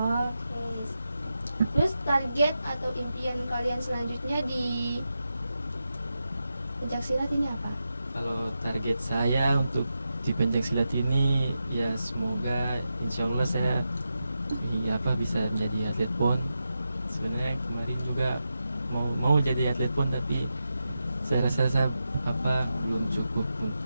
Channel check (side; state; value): both; inverted; correlation -0.89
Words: Oke. Terus target atau impian kalian selanjutnya di pencaksilat ini apa? Kalau target saya untuk di pencaksilat ini ya semoga insya Allah saya bisa menjadi atlet PON. Sebenarnya kemarin juga mau jadi atlet PON, tapi saya rasa belum cukup